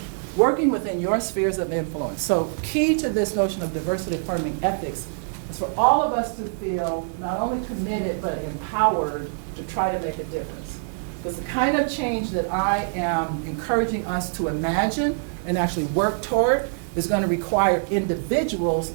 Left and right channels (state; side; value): silent; left; 62 dB below the other